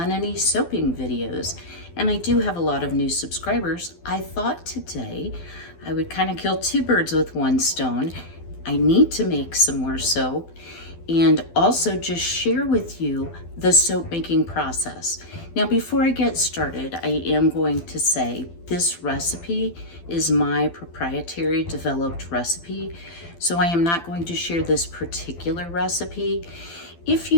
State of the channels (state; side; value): late; right; 12 ms